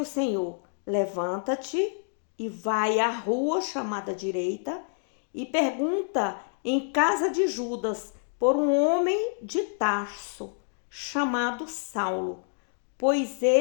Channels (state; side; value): silent; right; digital silence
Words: Senhor: Levanta-te e vai à rua chamada direita e pergunta em casa de Judas por um homem de Tarso chamado Saulo, pois